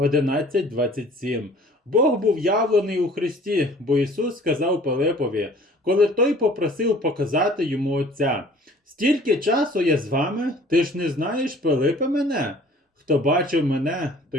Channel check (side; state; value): both; normal; correlation 0.51